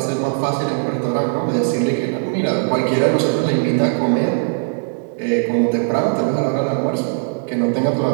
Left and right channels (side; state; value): left; silent; 67 dB below the other